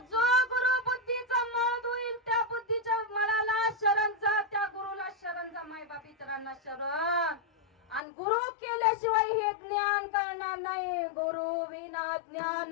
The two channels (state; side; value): drops out; right; at 8.0 s